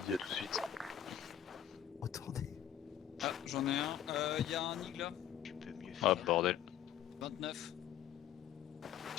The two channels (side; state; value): right; quieter; 10.5 dB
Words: à tout de suite. Retournez. Ah, j'en ai un. Y a un Nig là. Tu peux mieux Ah, faire. bordel. 29.